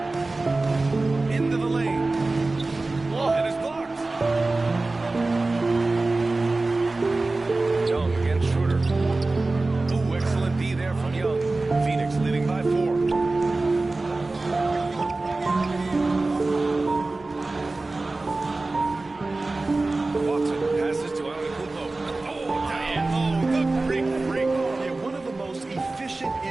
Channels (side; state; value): left; quieter; 3.3 dB